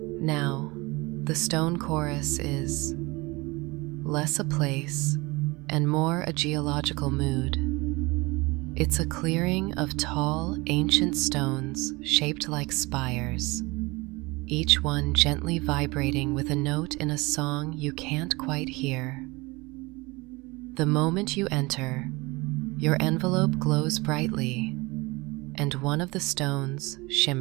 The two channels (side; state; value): left; quieter; 23.9 dB